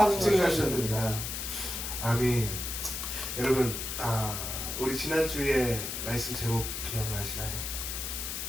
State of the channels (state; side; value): noise; left; hiss, 4 dB below the sound